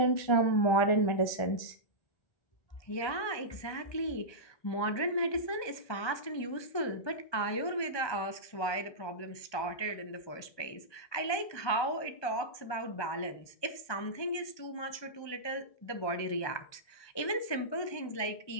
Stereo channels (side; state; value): right; late; 1.2 ms